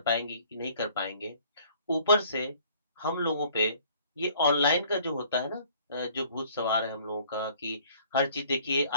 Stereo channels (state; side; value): inverted; both; correlation -0.56